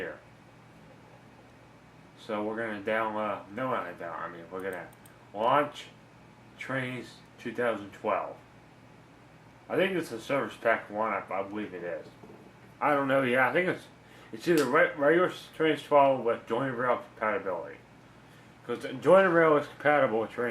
So we're going to download, we're going to launch Trainz 2012. I think it's a Service Pack 1, I believe it is. I don't know, yeah, I think it's either regular Trainz 12 with joint rail compatibility. Because Join Rail is compatible with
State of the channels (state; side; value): identical; both; correlation 1.00